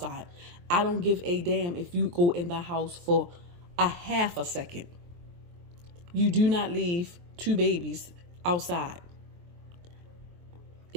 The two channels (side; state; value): left; late; 23 ms